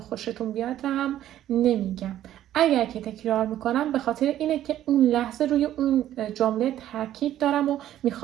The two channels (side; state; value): left; quieter; 12.3 dB